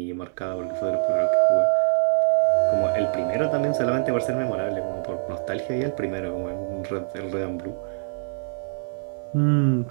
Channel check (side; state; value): left; silent; 62 dB below the other